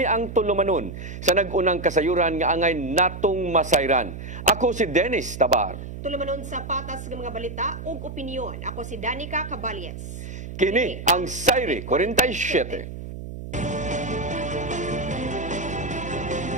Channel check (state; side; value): noise; right; hum, 9 dB below the sound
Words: ang tulumanon sa nag-unang kasayuran nga angay natong masayran. Ako si Dennis Tabar. Tulumanon sa patas ng mga balita ug opinyon. Ako si Danica Caballes. Kini ang Sairi 47.